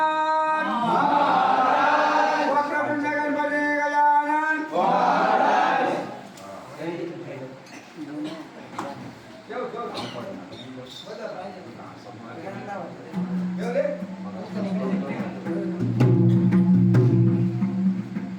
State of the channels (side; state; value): both; identical; correlation 1.00